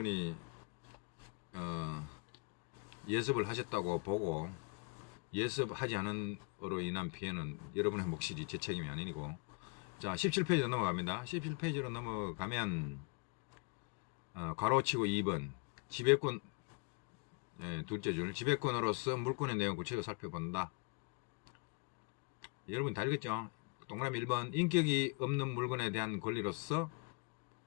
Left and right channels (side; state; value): right; quieter; 32.9 dB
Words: 예습을 하셨다고 보고, 예습하지 않은 으로 인한 피해는 여러분의 몫이지 제 책임이 아니고. 자, 17페이지로 넘어갑니다. 17페이지로 넘어가면, 가로치고 2번. 지배권, 둘째 줄. 지배권으로서 물권의 내용 구체적으로 살펴본다. 여러분 다 읽었죠? 동그라미 1번. 인격이 없는 물건에 대한 권리로서